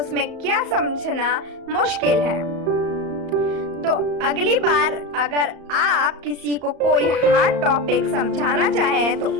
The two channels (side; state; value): left; late; 34 ms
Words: क्या समझना मुश्किल है। तो अगली बार अगर आप किसी को कोई हार्ड टॉपिक समझाना चाहें तो